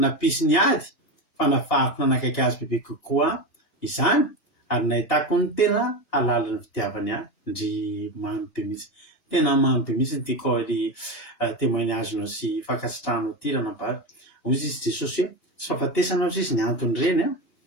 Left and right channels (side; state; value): right; late; 2.8 ms